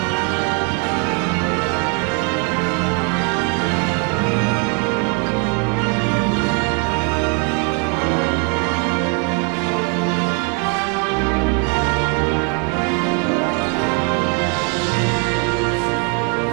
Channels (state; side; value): quieter; left; 36.5 dB